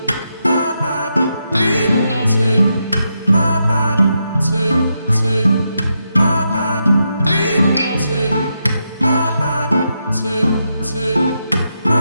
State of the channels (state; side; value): inverted; both; correlation -0.84